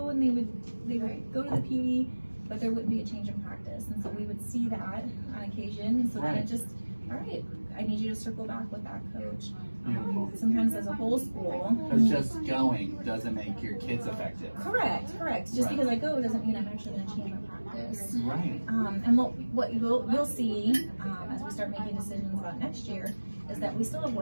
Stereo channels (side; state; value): both; inverted; correlation -1.00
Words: and they would go to the PD, but there wouldn't be a change in practice, and so we would see that on occasion. And so then it just, all right, I need you to circle back with that coach. Beautiful. Sometimes as a whole school. Because just going doesn't make your kids effective. Correct. Just Right. because I go doesn't mean I'm actually going to change my practice. Right. And what you'll see as we start making decisions about next year is that we still have